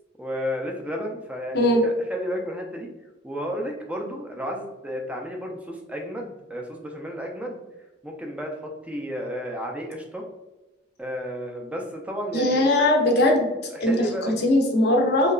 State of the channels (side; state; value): both; normal; correlation 0.40